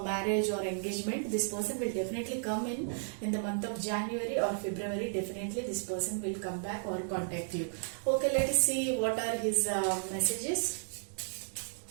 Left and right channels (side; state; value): left; silent; digital silence